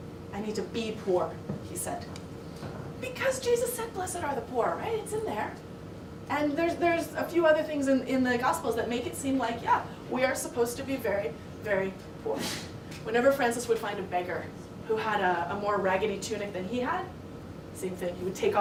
I need to be poor, he said. Because Jesus said, blessed are the poor, right? It's in there. And there's a few other things in the Gospels that make it seem like, yeah, we are supposed to be very, very poor. Whenever Francis would find a beggar who had a more raggedy tunic than he had, same thing, he would take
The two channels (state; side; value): identical; both; correlation 1.00